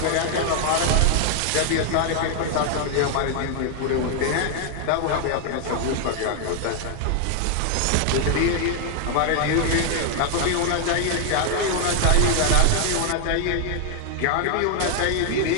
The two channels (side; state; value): both; different; correlation 0.00